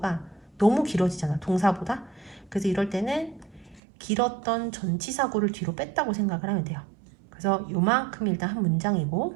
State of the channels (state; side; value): drops out; left; at 3.8 s